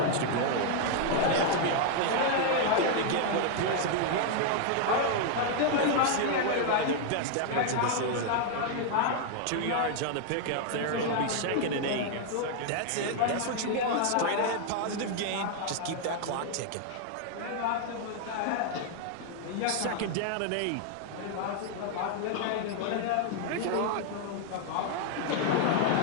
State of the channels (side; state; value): both; different; correlation 0.00